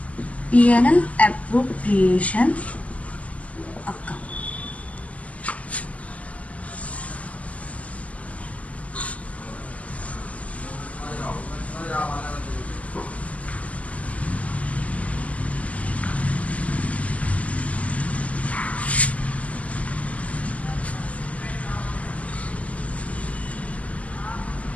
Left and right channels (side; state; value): right; late; 0.070 ms